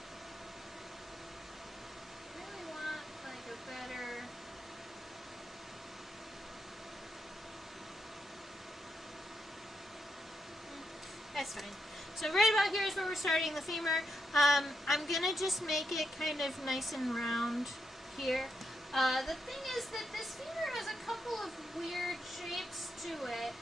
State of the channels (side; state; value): both; normal; correlation 0.82